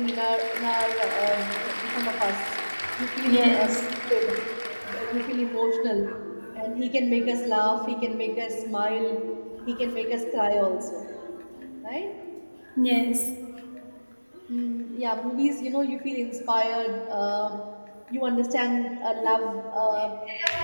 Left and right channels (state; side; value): inverted; both; correlation -1.00